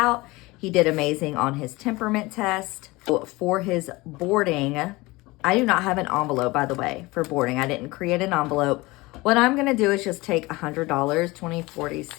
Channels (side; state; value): right; quieter; 21.8 dB